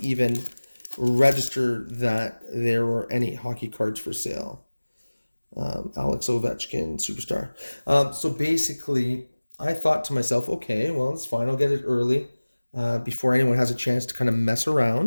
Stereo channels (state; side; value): inverted; both; correlation -1.00